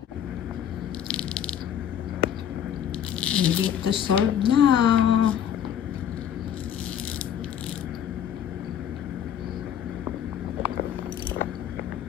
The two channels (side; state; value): right; quieter; 9.4 dB